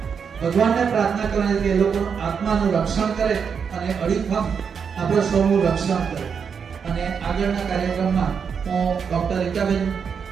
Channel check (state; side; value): quieter; left; 6.6 dB